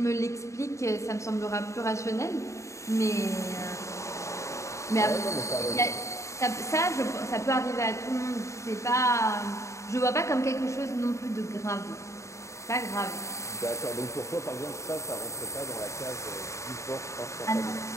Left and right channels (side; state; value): right; late; 0.14 ms